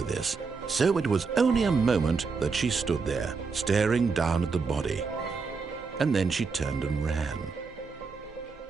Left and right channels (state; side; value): quieter; left; 4.8 dB